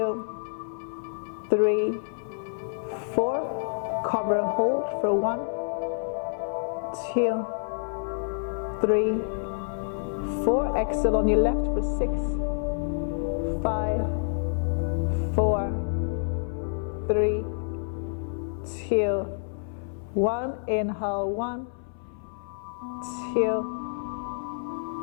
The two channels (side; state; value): right; silent; 59 dB below the other